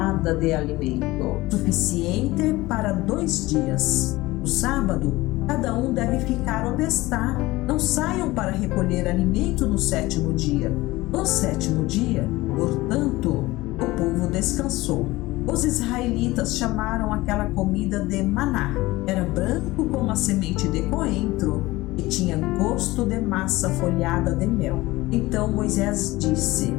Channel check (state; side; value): quieter; right; 19.4 dB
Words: de alimento, suficiente para 2 dias. No sábado, cada um deve ficar onde está. Não saiam para recolher alimento no 7º dia. No 7º dia, portanto, o povo descansou. Os israelitas chamaram aquela comida de maná. Era branco como a semente de coentro e tinha gosto de massa folhada de mel. Então Moisés disse: